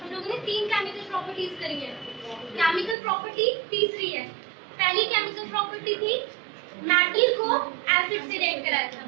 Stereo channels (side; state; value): left; drops out; at 3.0 s